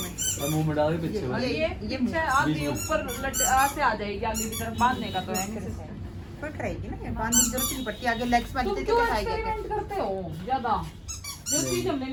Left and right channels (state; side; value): identical; both; correlation 1.00